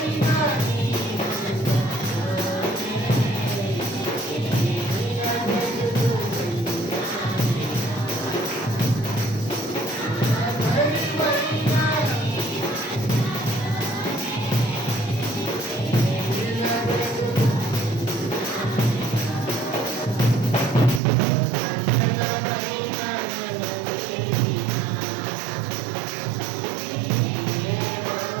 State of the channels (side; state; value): left; drops out; at 21.0 s